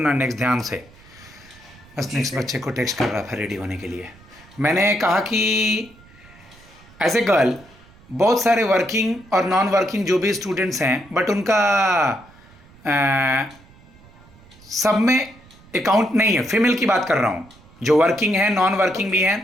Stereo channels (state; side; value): noise; right; rumble, 25 dB below the sound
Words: नेक्स्ट ध्यान से। बस जी नेक्स्ट सर। बच्चे को टेक्स्ट कर रहा था रेडी होने के लिए। मैंने कहा कि एज ए गर्ल बहुत सारे वर्किंग और नॉन वर्किंग जो भी स्टूडेंट्स हैं, बट उनका सब में अकाउंट नहीं है। फीमेल की बात कर रहा हूँ, जो वर्किंग है, नॉन वर्किंग भी है।